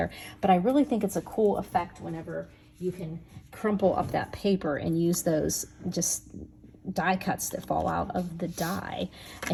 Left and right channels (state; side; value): identical; both; correlation 1.00